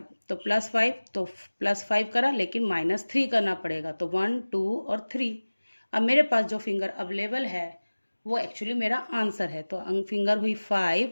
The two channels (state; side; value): inverted; both; correlation -1.00